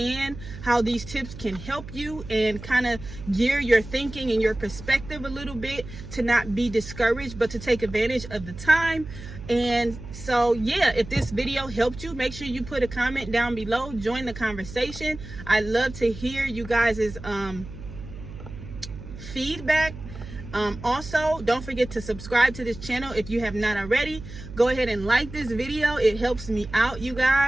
how these tips can help you and kind of gear your thinking and your perspective a little bit to not be discouraged, but to take advantage of the time. And so, yeah, if this video helped you, make sure you put a comment down below. Join the conversation. I love to hear you guys' feedback. Also, don't forget to subscribe to this channel if you have not already. Go ahead and like this video. It helps me out, you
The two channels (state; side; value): noise; right; hum, 13 dB below the sound